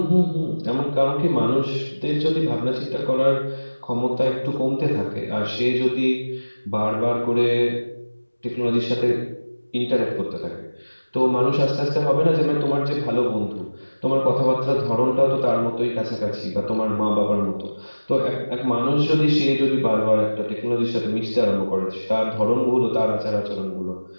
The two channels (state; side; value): inverted; both; correlation -1.00